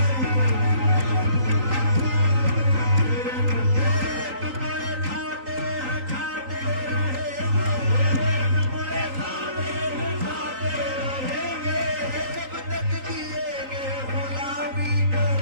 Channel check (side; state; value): left; late; 3.9 ms